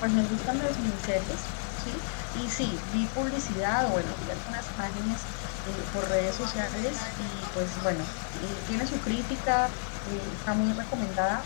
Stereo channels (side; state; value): right; silent; 57 dB below the other